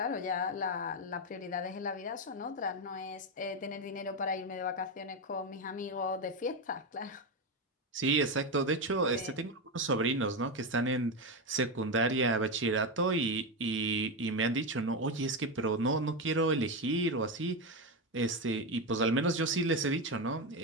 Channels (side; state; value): both; normal; correlation 0.12